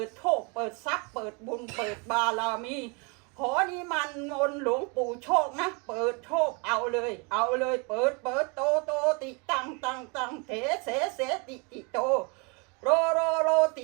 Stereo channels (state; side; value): quieter; left; 32.3 dB